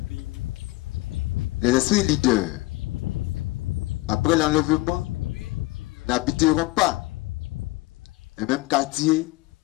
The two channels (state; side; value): quieter; right; 20.8 dB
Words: Les esprits leaders, après l'enlèvement, n'habiteront pas les mêmes quartiers